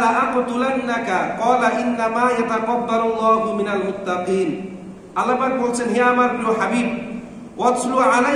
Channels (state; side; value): identical; both; correlation 1.00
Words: লা আকতুলান্নাকা ক্বালা ইন্নামা ইয়াতাকাব্বালুল্লাহু মিনাল মুত্তাকিন। আল্লাহ পাক বলছেন, হে আমার প্রিয় হাবিব, ওয়াতলু